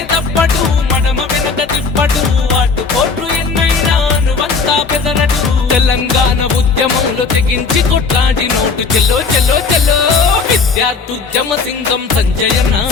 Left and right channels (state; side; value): quieter; right; 4.7 dB